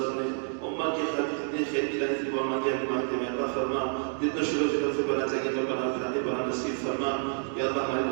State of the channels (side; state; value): left; silent; 59 dB below the other